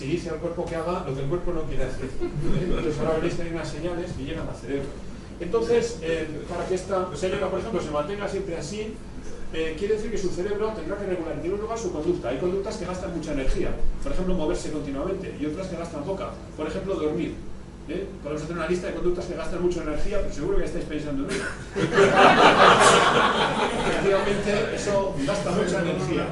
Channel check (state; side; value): identical; both; correlation 1.00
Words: dice al cuerpo que haga lo que el cuerpo no quiere hacer. Entonces, ahora veréis que hay unas señales que llegan al cerebro. Entonces, para que esta señora, por ejemplo, se mantenga siempre así, quiere decir que su cerebro tendrá que regular en primer lugar su conducta. Hay conductas que gastan mucha energía, por ejemplo, moverse continuamente, y otras que gastan poca, por ejemplo, dormir. Podemos hacer una lista de conductas que gastan mucha energía, pero seguro que estáis pensando en ello. Efectivamente, eso gasta mucha energía,